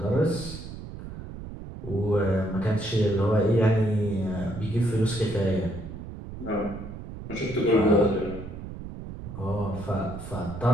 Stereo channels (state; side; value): noise; right; rumble, 11 dB below the sound